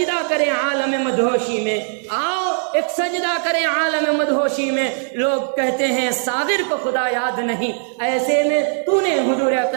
کریں عالم مدہوشی میں، آؤ ایک سجدہ کریں عالم مدہوشی میں۔ لوگ کہتے ہیں ساغر کو خدا یاد نہیں، ایسے میں تو نے حضور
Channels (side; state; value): left; silent; 66 dB below the other